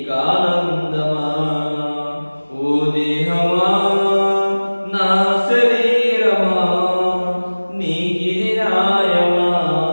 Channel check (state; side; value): inverted; both; correlation -1.00